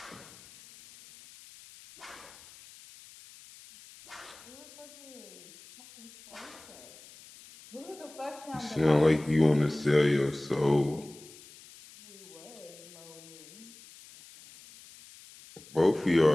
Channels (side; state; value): left; noise; hiss, 20 dB below the sound